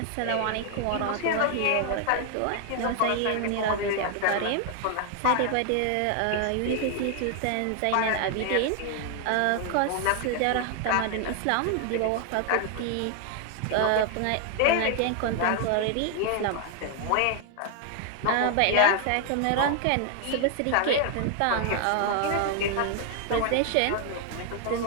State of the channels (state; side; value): different; both; correlation 0.00